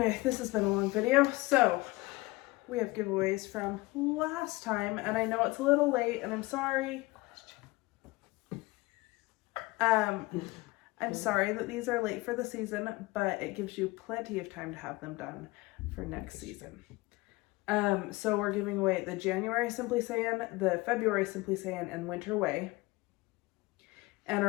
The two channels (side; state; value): right; quieter; 22.1 dB